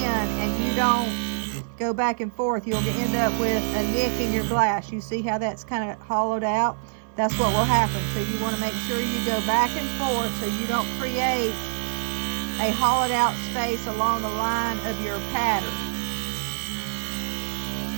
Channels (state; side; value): silent; left; 62 dB below the other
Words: and you don't go back and forth, you'll end up with a nick in your glass. You see how that's kind of hollowed out? That's what will happen. So you want to make sure you go back and forth so you don't create a hollowed out space along the line of your pattern.